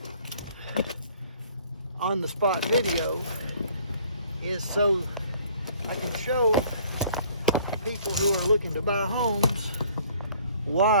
on-the-spot video is so I can show people who are looking to buy homes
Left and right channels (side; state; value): both; inverted; correlation -0.57